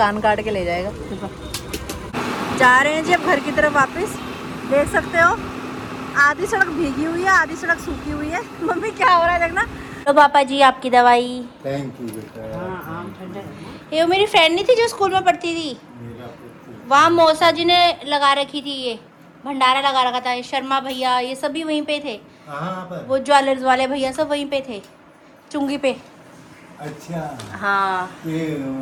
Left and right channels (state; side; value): identical; both; correlation 1.00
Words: काट के ले जाएगा। जा रहे हैं जी अब घर की तरफ वापस। देख सकते हो आधी सड़क भीगी हुई है, आधी सड़क सूखी हुई है। मम्मी क्या हो रहा है देखना। तो पापा जी आपकी दवाई। थैंक यू बेटा। ये मेरी फ्रेंड नहीं थी जो स्कूल में पढ़ती थी, वहाँ मौसा जी ने लगा रखी थी, ये भंडारा लगा रखा था। ये शर्मा भैया ये सभी वहीं पे थे, कहाँ पर? वो ज्वेलर्स वाले भैया सब वहीं पे थे, चुंगी पे। अच्छा हाँ ये